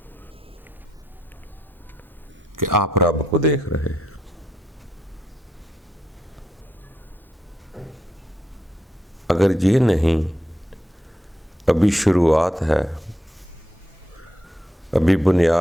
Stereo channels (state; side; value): normal; both; correlation 0.80